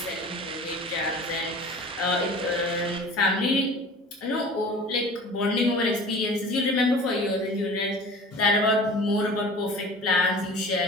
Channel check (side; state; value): both; normal; correlation 0.41